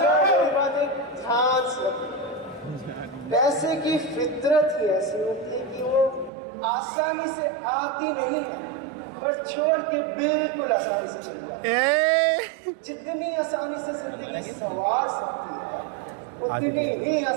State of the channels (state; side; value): drops out; left; at 6.3 s